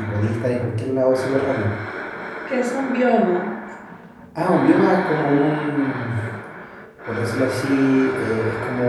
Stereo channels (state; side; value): identical; both; correlation 1.00